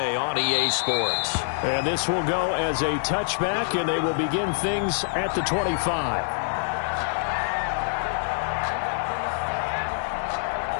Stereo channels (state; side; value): silent; right; 61 dB below the other